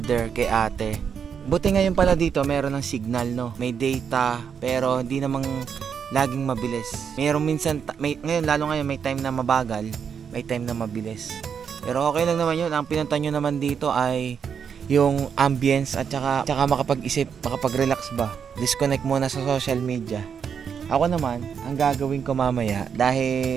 kay ate. Buti ngayon pala dito meron ng signal, no? May data, pero hindi namang laging mabilis. Meron minsan, ngayon lalo ngayon may time na mabagal, may time na mabilis. Pero okay lang naman yun. Ang pinunta nyo naman dito ay yung ambience at saka makapag-isip, makapag-relax ba. Disconnect muna sa social media. Ako naman, ang gagawin ko mamaya,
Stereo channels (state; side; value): quieter; left; 7.1 dB